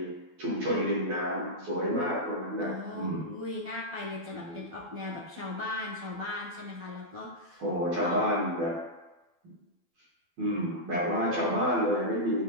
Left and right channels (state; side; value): late; left; 12 ms